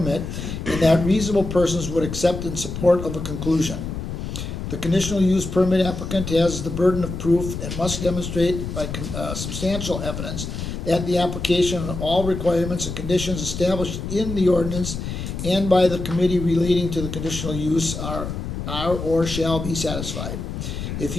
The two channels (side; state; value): left; noise; rumble, 6 dB below the sound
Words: and that reasonable persons would accept in support of a conclusion. The conditional use permit applicant has the burden of proof and must demonstrate by substantial evidence that the application and all requirements and conditions established in the ordinance and by the committee relating to the conditional use are or shall be satisfied. If